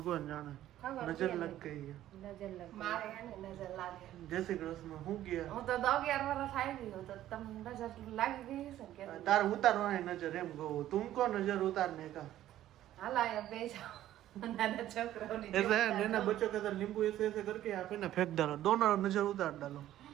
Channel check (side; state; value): left; quieter; 13.1 dB